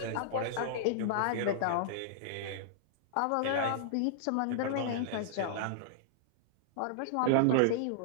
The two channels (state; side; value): different; both; correlation -0.02